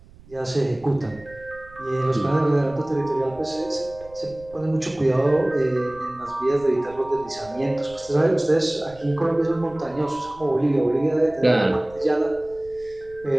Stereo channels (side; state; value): right; noise; rumble, 23 dB below the sound